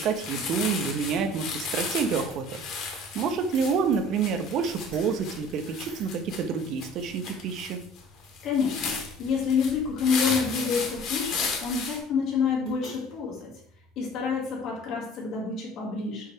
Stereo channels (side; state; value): both; normal; correlation 0.47